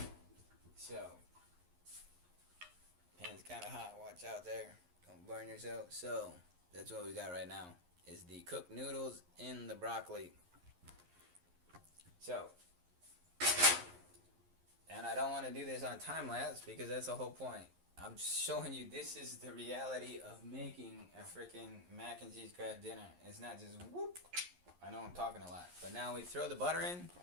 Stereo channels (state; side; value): late; left; 11 ms